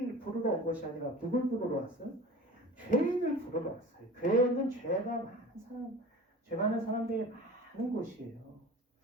부르러 온 것이 아니라 누굴 부르러 왔어요? 죄인을 부르러 왔어요. 교회는 죄 많은 사람들이 많은 곳이에요.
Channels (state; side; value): normal; both; correlation 0.38